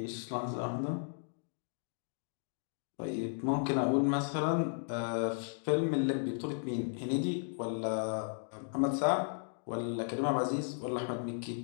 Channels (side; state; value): right; silent; digital silence